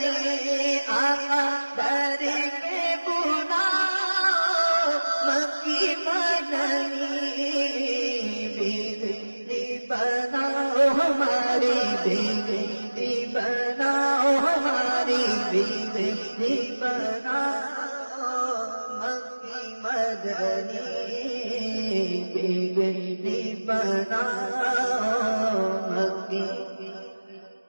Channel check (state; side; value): inverted; both; correlation -1.00